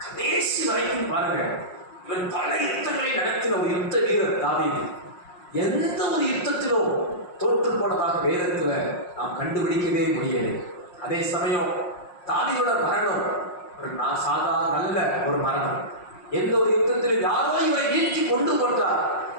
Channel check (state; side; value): late; right; 5.6 ms